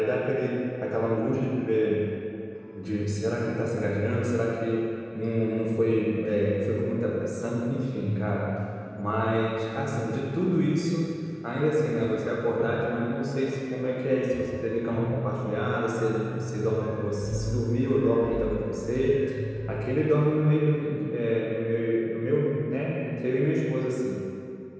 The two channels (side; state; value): both; identical; correlation 1.00